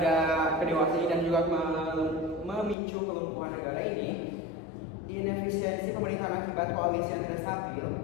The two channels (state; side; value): drops out; right; at 2.8 s